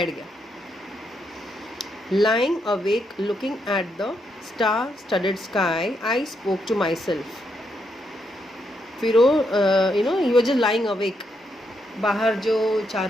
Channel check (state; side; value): normal; both; correlation 0.79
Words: गया. Lying awake looking at the star studded sky I spoke to myself. फिर वो he was just lying awake, बाहर जो